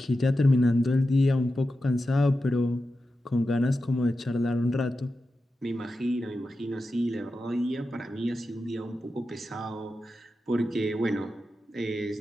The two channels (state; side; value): normal; both; correlation 0.91